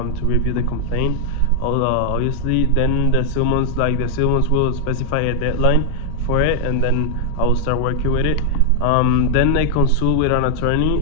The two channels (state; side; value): different; both; correlation 0.00